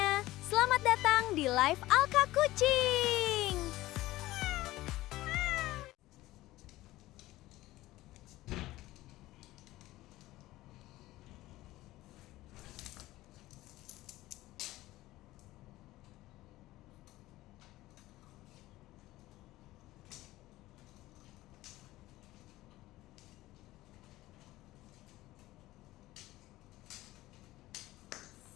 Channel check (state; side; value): quieter; right; 17.2 dB